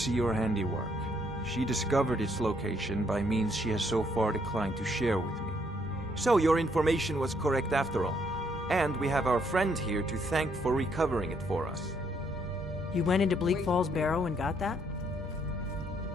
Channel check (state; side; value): normal; both; correlation 0.70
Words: your handiwork. She discovered its location by means she has so far declined to share with me. So your information was correct after all. And we have our friend here to thank for recovering it for us. You went into Bleak Falls Barrow and got that?